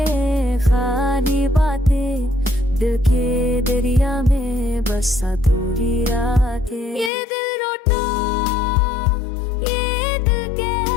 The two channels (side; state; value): right; drops out; at 7.1 s